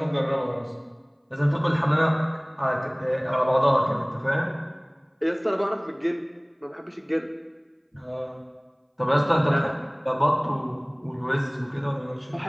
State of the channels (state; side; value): identical; both; correlation 1.00